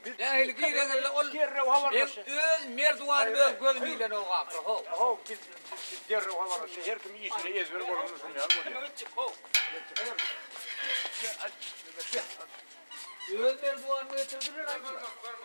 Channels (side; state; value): both; inverted; correlation -1.00